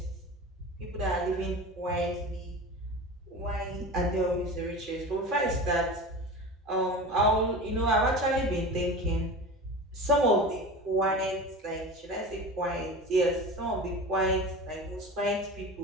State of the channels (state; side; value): normal; both; correlation 0.32